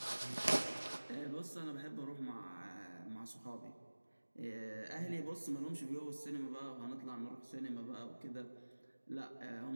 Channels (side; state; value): both; inverted; correlation -1.00